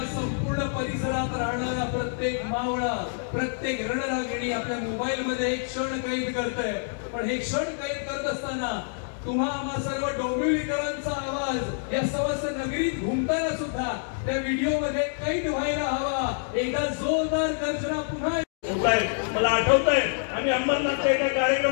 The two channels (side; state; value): right; silent; digital silence